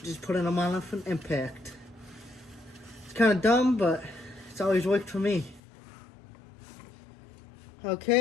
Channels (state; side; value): drops out; right; at 5.6 s